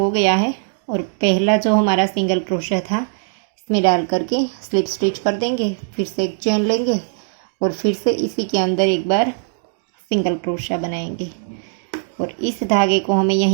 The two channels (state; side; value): silent; left; digital silence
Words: गया है और पहला जो हमारा सिंगल क्रोशा था इसमें डाल करके स्लिप स्टिच कर देंगे, फिर से एक चेन लेंगे और फिर से इसी के अंदर एक बार सिंगल क्रोशा बनाएंगे। और इस धागे को हमें